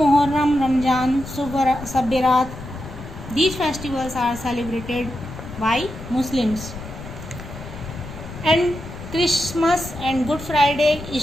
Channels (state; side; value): noise; left; rumble, 12 dB below the sound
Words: Ramzan, Sabbarat, these festivals are celebrated by Muslims. And Christmas and Good Friday,